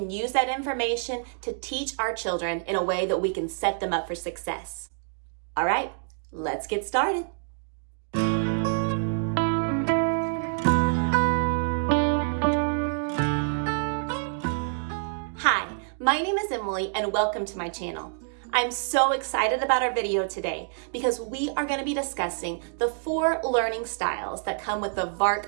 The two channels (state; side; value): silent; left; digital silence